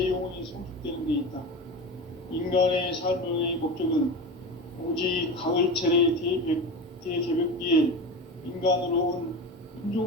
영혼이 성숙되는 데 있다. 인간의 삶의 목적은 오직 가을철의 대개벽기에 인간으로 온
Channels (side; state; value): both; normal; correlation 0.26